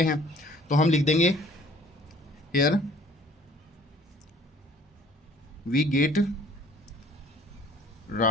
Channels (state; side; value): normal; both; correlation 0.55